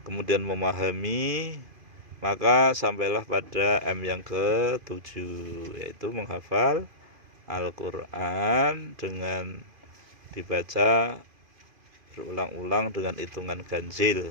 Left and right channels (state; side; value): late; left; 2.5 ms